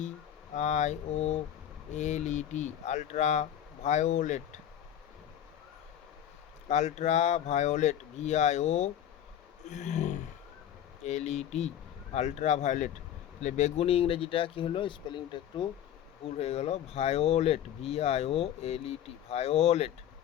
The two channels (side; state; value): right; quieter; 10.4 dB